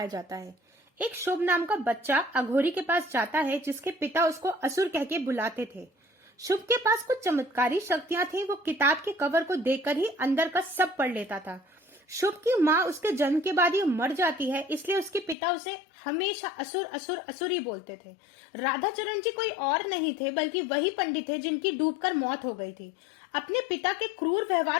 जाता है। एक शुभ नाम का बच्चा अघोरी के पास जाता है जिसके पिता उसको असुर कह के बुलाते थे। शुभ के पास कुछ चमत्कारी शक्तियां थी। वो किताब के कवर को देखकर ही अंदर का सब पढ़ लेता था। शुभ की माँ उसके जन्म के बाद ही मर जाती है, इसलिए उसके पिता उसे हमेशा असुर असुर असुर ही बोलते थे। राधाचरण जी कोई और नहीं थे बल्कि वही पंडित थे जिनकी डूबकर मौत हो गई थी। अपने पिता के क्रूर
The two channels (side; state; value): right; drops out; at 15.4 s